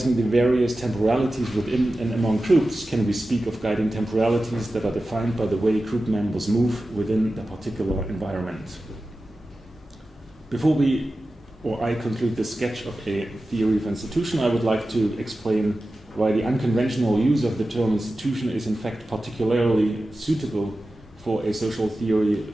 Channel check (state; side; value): normal; both; correlation 0.94